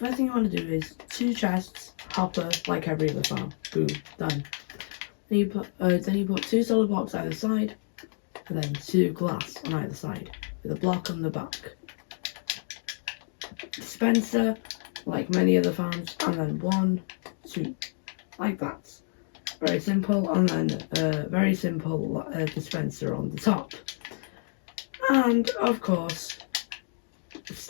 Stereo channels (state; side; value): silent; right; 57 dB below the other